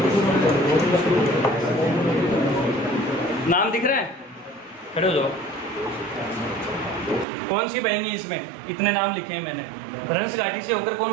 नाम दिख रहा है? खड़े हो जाओ। कौन सी बहेंगी इसमें? इतने नाम लिखे हैं मैंने। भ्रंश घाटी से होकर कौन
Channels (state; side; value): drops out; left; at 7.2 s